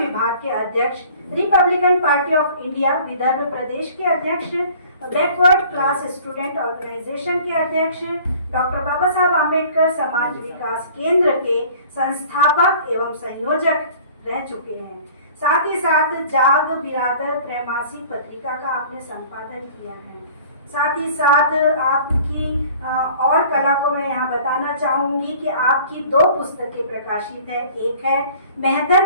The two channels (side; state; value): both; inverted; correlation -0.49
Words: के अध्यक्ष, Republican party of India Vidarbha प्रदेश के अध्यक्ष, बैकवर्ड क्लास स्टूडेंट ऑर्गेनाइजेशन के अध्यक्ष, डॉक्टर बाबा साहब आम्बेडकर समाज विकास केंद्र के संस्थापक एवं संयोजक रह चुके हैं। साथ ही साथ जाग बिरादर त्रैमासिक पत्रिका का आपने संपादन किया है। साथ ही साथ आपकी और कला को मैं यहाँ बताना चाहूँगी कि आपकी 2 पुस्तकें प्रकाशित है। एक है